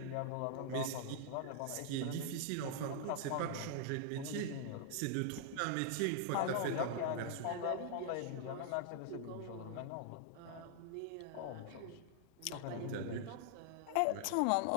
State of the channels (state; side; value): different; both; correlation -0.01